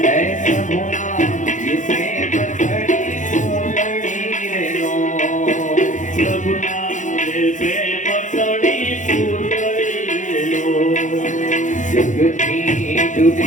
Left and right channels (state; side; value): late; right; 0.36 ms